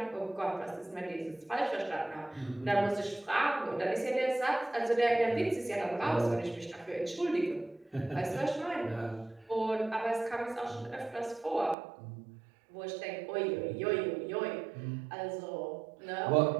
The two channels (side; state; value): left; drops out; at 11.8 s